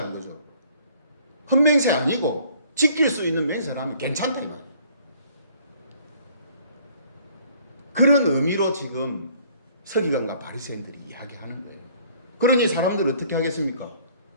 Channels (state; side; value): inverted; both; correlation -0.58